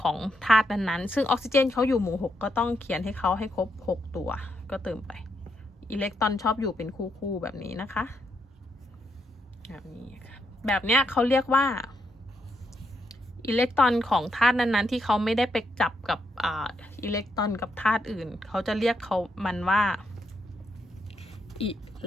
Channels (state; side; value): normal; both; correlation 0.79